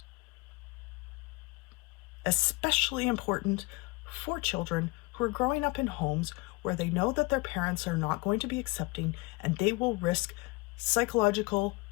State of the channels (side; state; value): right; quieter; 25.2 dB